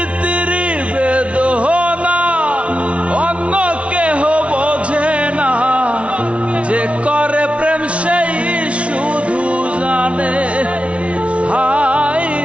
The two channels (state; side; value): late; left; 0.062 ms